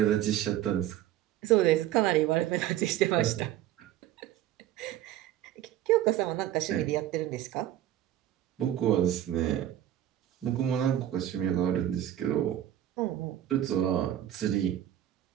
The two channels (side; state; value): left; quieter; 12.2 dB